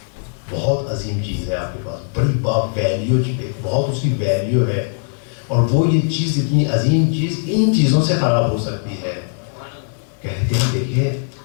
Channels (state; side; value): silent; right; 59 dB below the other